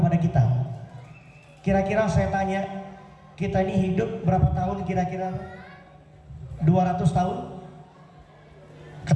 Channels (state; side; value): identical; both; correlation 1.00